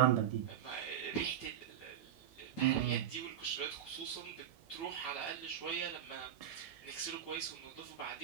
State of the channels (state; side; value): quieter; left; 10.2 dB